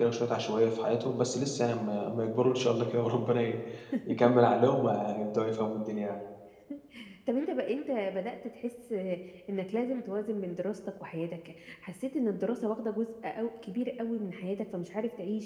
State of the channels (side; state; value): both; identical; correlation 1.00